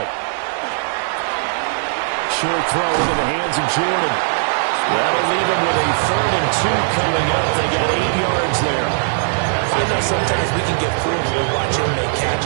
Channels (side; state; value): left; silent; digital silence